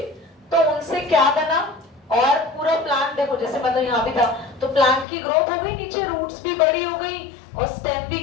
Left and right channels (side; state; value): right; drops out; at 5.1 s